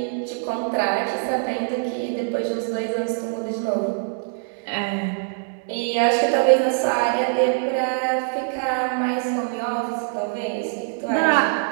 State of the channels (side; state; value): left; silent; digital silence